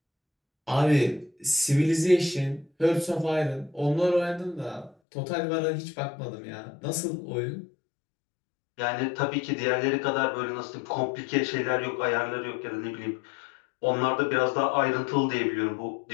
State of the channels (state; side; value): drops out; right; at 5.0 s